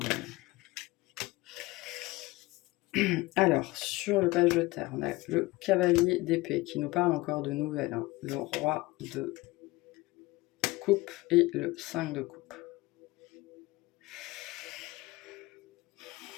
Alors, sur le page de terre, on a le cavalier d'épée qui nous parle encore de nouvelles, hein. Le roi de coupe et le 5 de coupe.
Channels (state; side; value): quieter; right; 20.9 dB